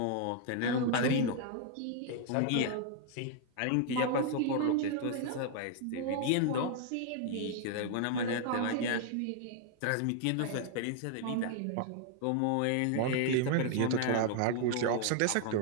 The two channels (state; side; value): different; both; correlation 0.00